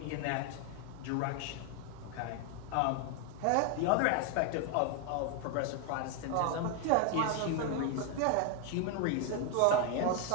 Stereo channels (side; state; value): both; different; correlation 0.01